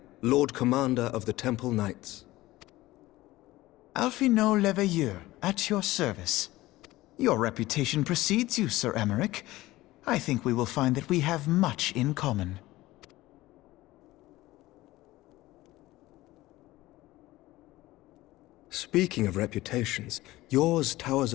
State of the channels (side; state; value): right; quieter; 17.8 dB